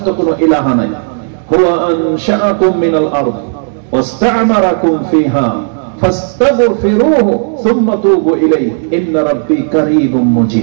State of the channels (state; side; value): silent; left; digital silence